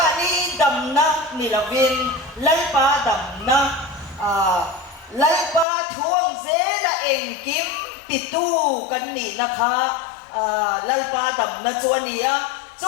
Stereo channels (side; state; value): right; drops out; at 5.7 s